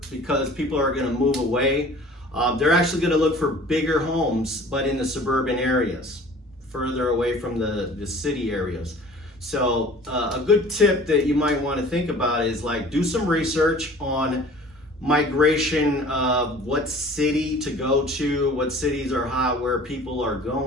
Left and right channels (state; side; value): normal; both; correlation 0.47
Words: because people are going to move away. They're actually going to look for bigger homes, but in the suburban areas, further away from the city areas. So a good tip that you might want to think about is, like, do some research on migration of what city to go to, what cities are hot, where people are